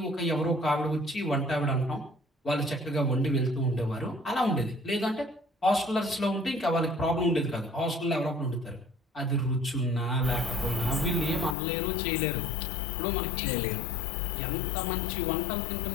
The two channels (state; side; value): drops out; right; at 11.6 s